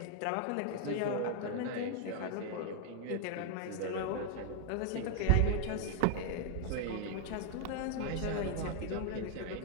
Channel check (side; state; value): both; different; correlation 0.00